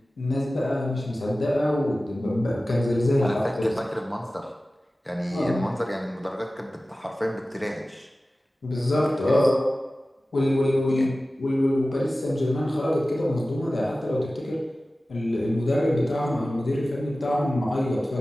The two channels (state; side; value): normal; both; correlation 0.96